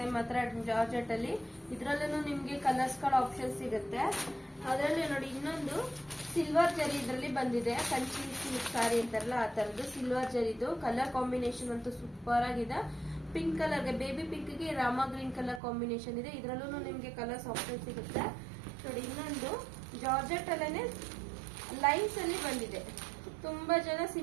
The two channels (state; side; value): drops out; left; at 15.6 s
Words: ಮಾತ್ರ ಜಾರ್ಜೆಟ್ ಅಲ್ಲಿ. ಇದ್ರಲ್ಲೂ ನಿಮ್ಗೆ ಕಲರ್ಸ್ ಗಳ ಆಪ್ಷನ್ ಸಿಗುತ್ತೆ. ಅದರಲ್ಲಿ ನೋಡಿ ಇನ್ನೊಂದು ಸಿಲ್ವರ್ ಜರಿ ಇದ್ರಲ್ಲಿ ಬಂದಿದೆ, ಕಂಚಿ ಸಿಲ್ಕ್ ಸಾರಿ ಅಂತಾರಲ್ಲ ಆ ತರದ್ದು ಸಿಲ್ವರ್ ಜರಿದು. ಕಲರ್ ಕಾಂಬಿನೇಷನ್ ಅಂತೂ ಸೂಪರ್ ಆಗಿದೆ. ಪಿಂಕ್ ಕಲರ್ಗೆ, ಬೇಬಿ ಪಿಂಕ್ ಗೆ ರಾಮ ಗ್ರೀನ್ ಕಲರ್ ಕಾಂಬಿನೇಷನ್ ಇದೆ. ಇದ್ರಲ್ಲೂ ನಿಮ್ಗೆ ಕಲರ್ಸ್ ಆಪ್ಷನ್ ಸಿಗುತ್ತೆ. ನೋಡಿ ಇನ್ನೊಂದು ಜಾರ್ಜೆಟ್ ಅಲ್ಲೇನೆ ಲೈನ್ಸ್ ಅಲ್ಲಿ ಬಂದಿದೆ. ತುಂಬಾ ಜನ